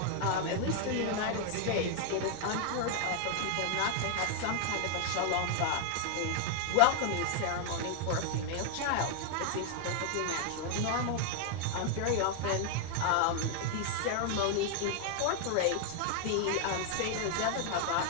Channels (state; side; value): different; both; correlation 0.00